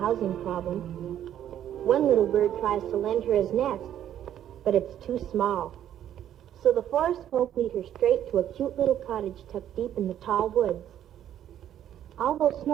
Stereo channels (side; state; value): left; quieter; 10.8 dB